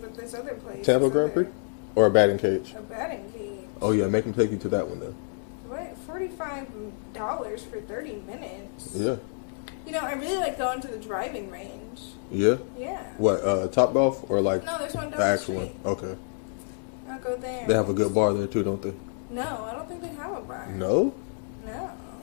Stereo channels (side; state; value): right; silent; 59 dB below the other